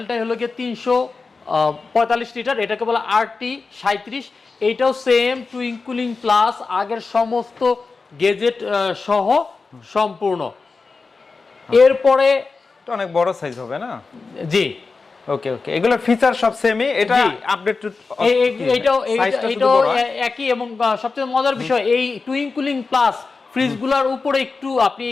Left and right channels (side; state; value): right; quieter; 4.3 dB